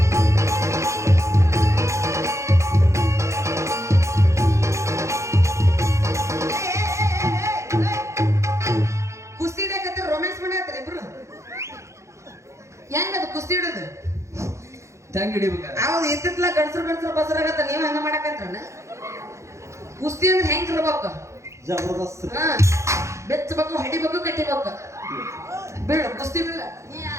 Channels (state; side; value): late; left; 0.14 ms